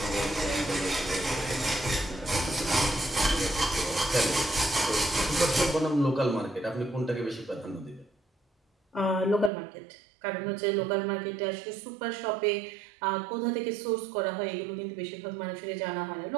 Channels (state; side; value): drops out; left; at 9.5 s